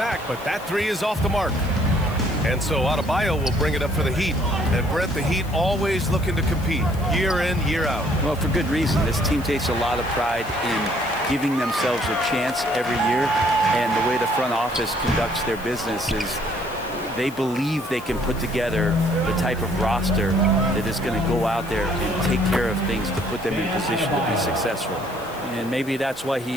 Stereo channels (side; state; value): left; noise; hiss, 20 dB below the sound